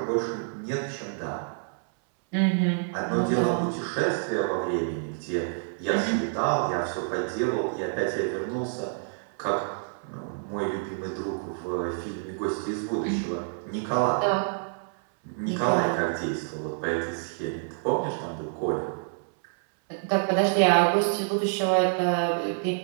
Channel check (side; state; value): left; silent; 60 dB below the other